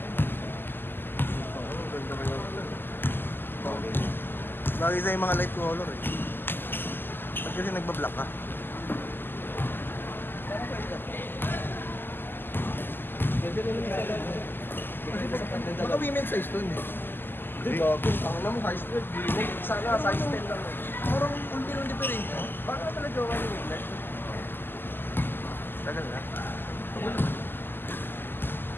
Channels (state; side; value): late; right; 0.096 ms